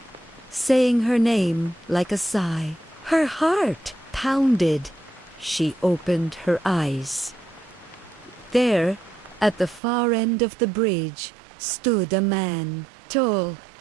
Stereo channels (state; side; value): drops out; left; at 9.8 s